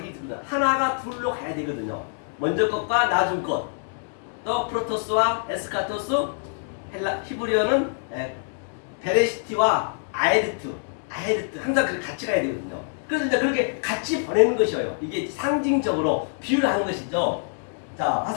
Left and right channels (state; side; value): silent; right; digital silence